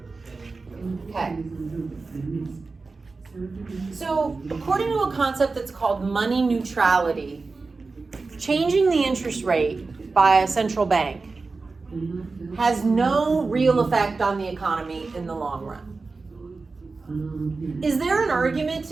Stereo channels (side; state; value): left; quieter; 4.0 dB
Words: Okay. So according to a concept that's called money neutrality, changing the interest rate by a central bank has no real effect on the economy in the long run. Is there an argument